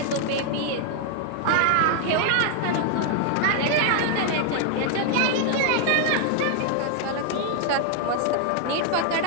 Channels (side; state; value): both; different; correlation 0.00